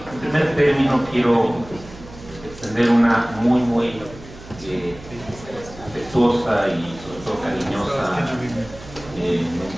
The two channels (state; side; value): noise; right; hum, 17 dB below the sound